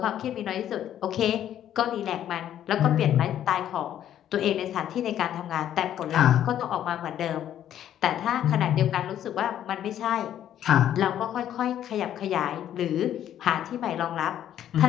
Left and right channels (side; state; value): right; quieter; 10.9 dB